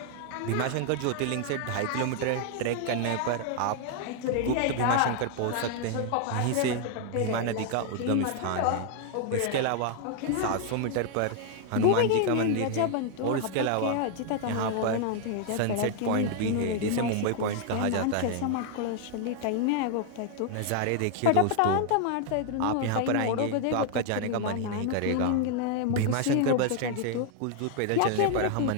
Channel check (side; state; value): both; different; correlation 0.00